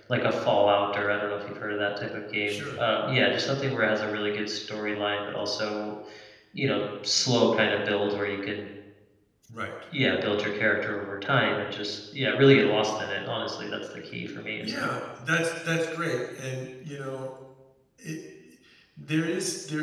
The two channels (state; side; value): identical; both; correlation 1.00